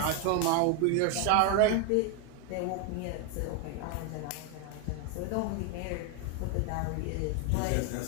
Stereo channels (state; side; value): different; both; correlation 0.01